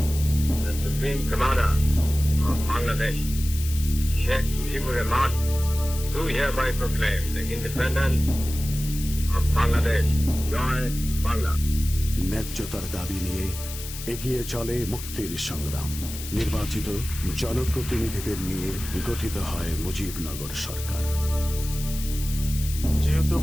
the Supreme Commander of Bangladesh, Sheikh Mujibur Rahman, do hereby proclaim the independence of Bangladesh. Joy Bangla. ন্যায্যতার দাবি নিয়ে এগিয়ে চলে মুক্তির সংগ্রাম। নির্বাচিত জনপ্রতিনিধিদের নিয়ে গঠিত হয় মুজিবনগর সরকার। যেহেতু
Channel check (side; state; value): left; noise; hiss, 10 dB below the sound